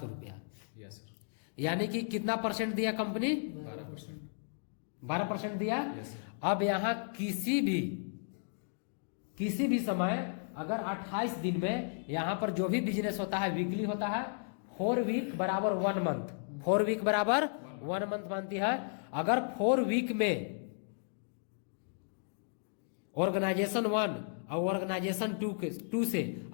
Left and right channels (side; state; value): right; silent; digital silence